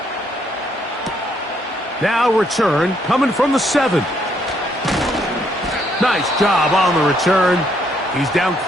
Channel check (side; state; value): both; normal; correlation 0.71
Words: Now return coming from the 7. Nice job on the return. He's down